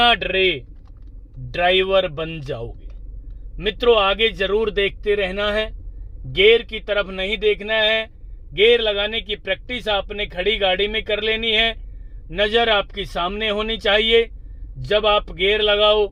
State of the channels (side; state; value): both; identical; correlation 1.00